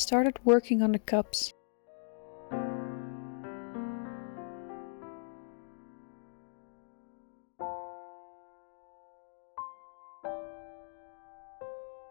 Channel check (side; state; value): right; silent; digital silence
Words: working on the cups.